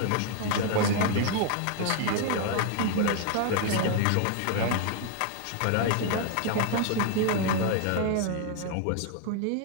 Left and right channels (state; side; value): different; both; correlation 0.00